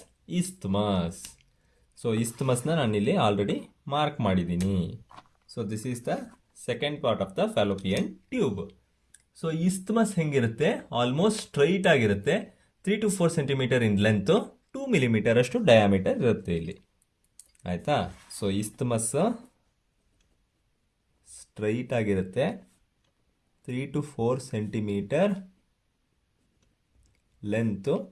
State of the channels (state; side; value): identical; both; correlation 1.00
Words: isthmus. So isthmusನ ನಾನಿಲ್ಲಿ ಆಲ್ರೆಡಿ ಮಾರ್ಕ್ ಮಾಡಿದ್ದೀನಿ. So this is the second part of the fallopian tube. So isthmus ಹೆಂಗಿರುತ್ತೆ, almost straight ಆಗಿರುತ್ತೆ. 3 to 4 centimetre in length, 2 millimetre ಅಷ್ಟು diameter ಇರುತ್ತೆ ಇಲ್ಲಿ. ಆಯಿತಾ, so isthmus straight ಆಗಿರುತ್ತೆ, 3 to 4 centimetre length,